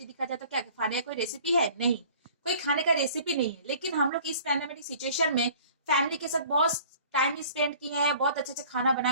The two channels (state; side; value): inverted; both; correlation -0.49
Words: दिखाया जा रहा है, तो क्या खाने का कोई रेसिपी है? नहीं, कोई खाने का रेसिपी नहीं है। लेकिन हम लोग इस पैंडेमिक सिचुएशन में फैमिली के साथ बहुत टाइम स्पेंड किए हैं, बहुत अच्छे अच्छे खाना